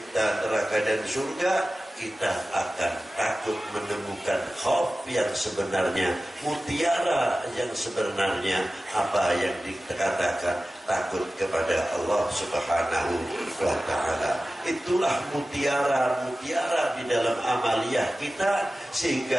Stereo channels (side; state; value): both; normal; correlation 0.95